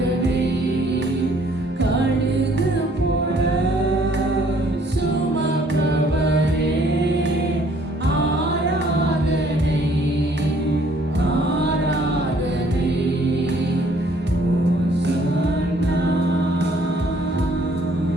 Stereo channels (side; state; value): both; normal; correlation 0.61